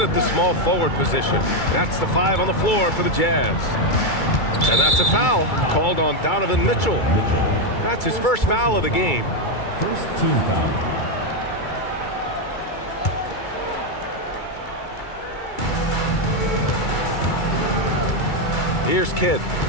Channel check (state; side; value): late; right; 2.3 ms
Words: at the small forward position. That's the 5 on the floor for the Jazz. And that's a foul called on Donovan Mitchell. That's his first foul of the game. First team foul. Here's Kidd.